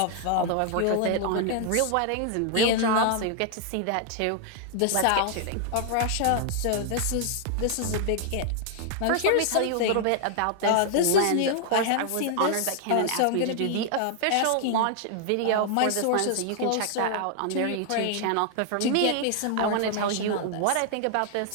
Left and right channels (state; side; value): different; both; correlation 0.00